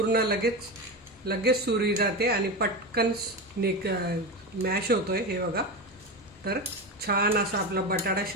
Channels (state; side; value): normal; both; correlation 0.20